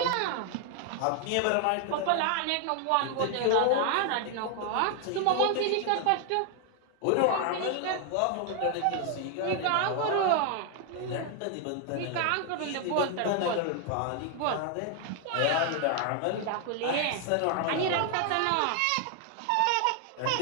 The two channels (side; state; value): both; different; correlation 0.00